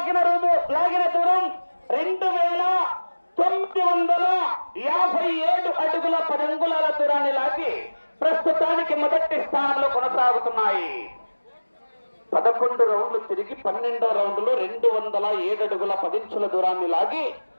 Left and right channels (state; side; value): inverted; both; correlation -1.00